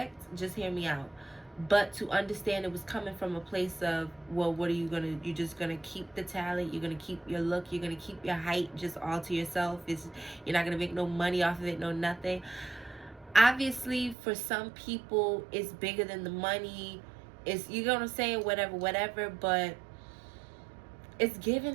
just hear me out, but to understand it was coming from a place of, well, what are you gonna, you're just gonna keep the talent, you're gonna keep your look, you're gonna keep your height just all to yourself, you're not gonna make no money off of it, no nothing. Obviously, for some people, it's bigger than the money, it's, you know what I'm saying, whatever, but it's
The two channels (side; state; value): left; drops out; at 14.2 s